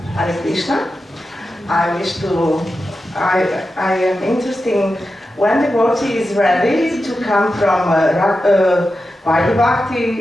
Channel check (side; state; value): both; normal; correlation 0.91